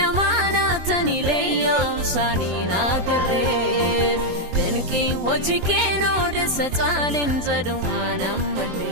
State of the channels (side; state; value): left; late; 23 ms